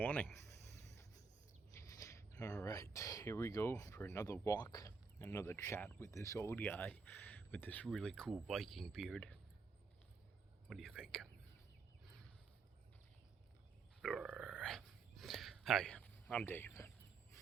All right, here we go for another walk, another chat with this old guy with this really cool Viking beard. What do you think? Hi, I'm Dave.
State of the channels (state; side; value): quieter; left; 5.0 dB